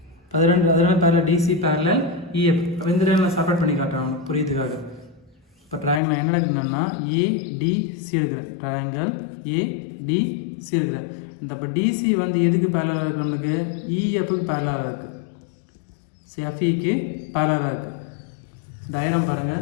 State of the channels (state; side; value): drops out; right; at 6.0 s